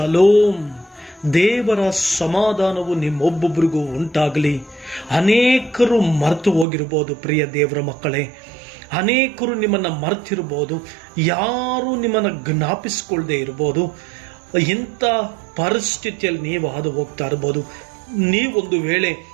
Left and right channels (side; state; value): left; drops out; at 6.7 s